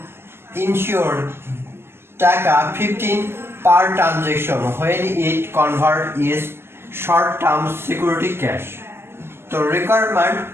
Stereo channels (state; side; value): late; left; 0.12 ms